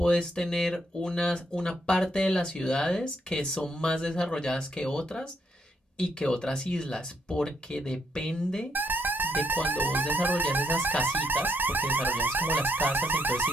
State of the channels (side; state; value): both; normal; correlation 0.75